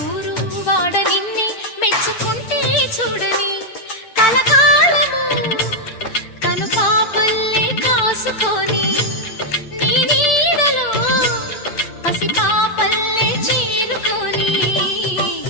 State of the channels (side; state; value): right; late; 9.0 ms